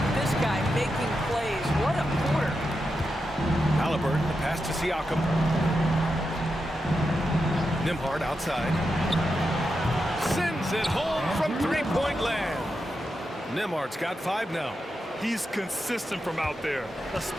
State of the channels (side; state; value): both; normal; correlation 0.88